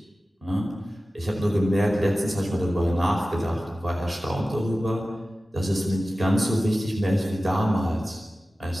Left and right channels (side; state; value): both; normal; correlation 0.96